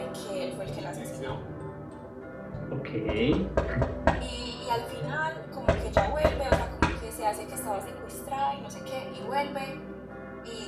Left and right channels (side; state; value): both; identical; correlation 1.00